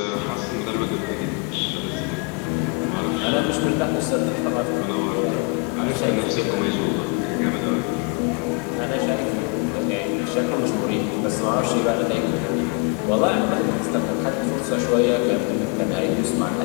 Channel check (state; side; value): quieter; right; 31.7 dB